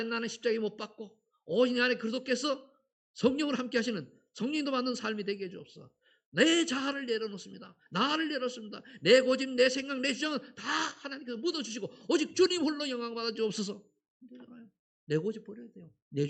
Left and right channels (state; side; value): identical; both; correlation 1.00